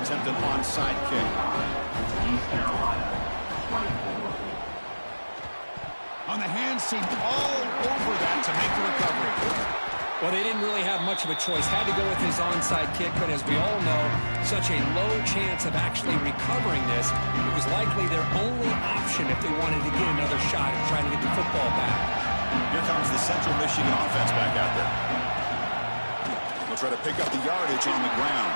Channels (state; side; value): inverted; both; correlation -1.00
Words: an onside kick. On the hands team, all over that to make the recovery. Well, they didn't really have much of a choice. Had to go with his onside kick, but as we all know, such a low chance of actually recovering this. It was likely their only option if they wanted to get another shot at trying to get the football back. Here comes the Central Michigan offense back out there. They'll try to pick up the yardage on the ground.